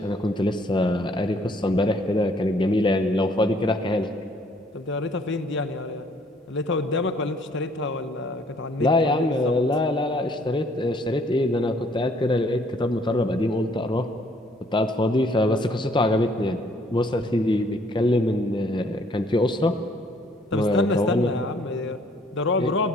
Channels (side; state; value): both; normal; correlation 0.63